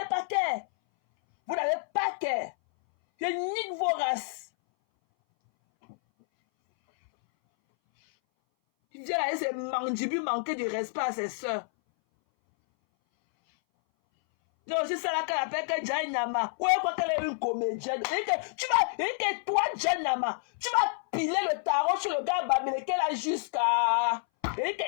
pas cœur. Vous n'avez pas cœur. Je nique vos races. Il vient là, c'est mandibules manquer de respect à ses soeurs. Non, c'est ça là qu'elle appelle que Djanama. Ouais, quoi qu'elle est une comédienne. Et toi, Djanama, tu vas piler le tarot sur le gars Bamileke là jusqu'à. Il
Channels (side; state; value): right; silent; 59 dB below the other